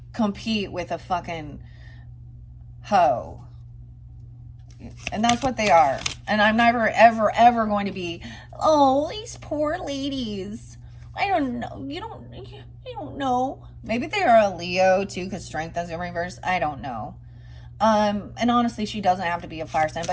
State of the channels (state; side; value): identical; both; correlation 1.00